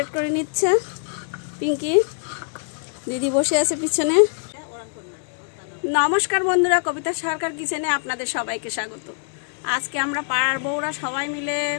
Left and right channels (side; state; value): right; silent; digital silence